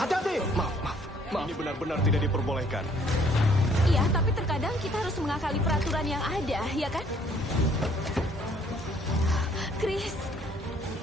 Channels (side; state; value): both; normal; correlation 0.62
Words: Maaf. Ini benar-benar tidak diperbolehkan. Iya, tapi terkadang kita harus mengakali peraturan yang ada, ya kan? Chris,